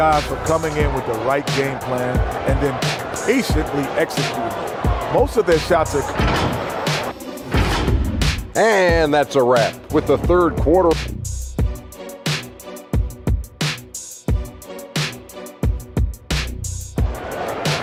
for coming in with the right game plan and then patiently executing. Most of their shots are... And that's a wrap with the third quarter.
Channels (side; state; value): both; identical; correlation 1.00